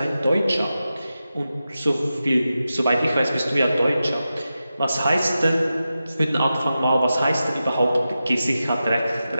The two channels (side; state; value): both; inverted; correlation -0.92